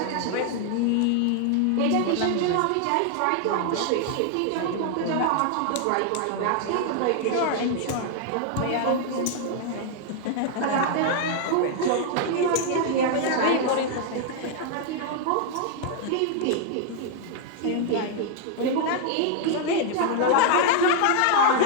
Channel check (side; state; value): both; different; correlation 0.00